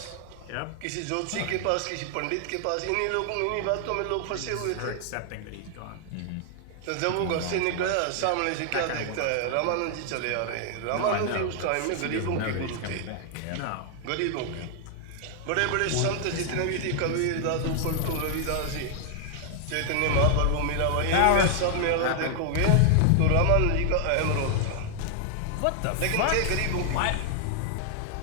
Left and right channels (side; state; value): both; different; correlation 0.00